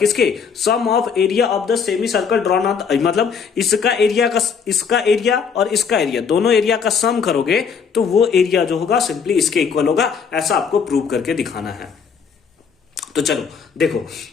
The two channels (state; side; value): quieter; right; 6.3 dB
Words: sum of area of the semi circle drawn on, मतलब इसका एरिया का, इसका एरिया और इसका एरिया, दोनों एरिया का सम करोगे तो वो एरिया जो होगा सिंपली इसके इक्वल होगा। ऐसा आपको प्रूव करके दिखाना है। तो चलो देखो